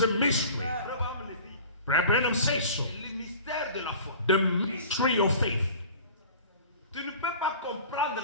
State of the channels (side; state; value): both; inverted; correlation -0.42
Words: a mystery. Abraham le dit. Brother Branham says so. Le mystère de la foi. The mystery of faith. Tu ne peux pas comprendre